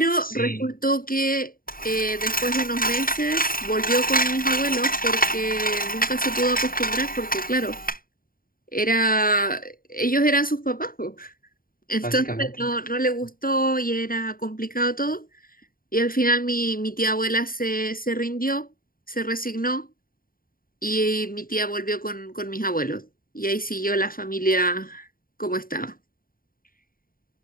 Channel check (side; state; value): right; late; 0.41 ms